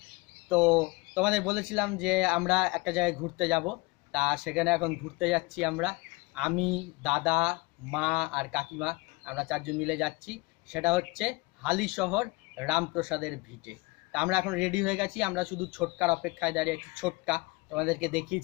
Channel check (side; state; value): right; quieter; 25.0 dB